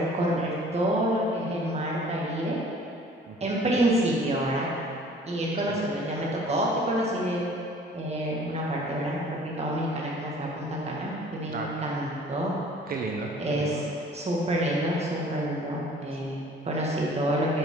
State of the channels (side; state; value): both; normal; correlation 0.51